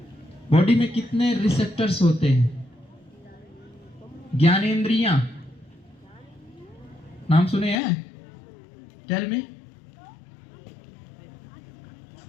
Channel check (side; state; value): right; drops out; at 7.8 s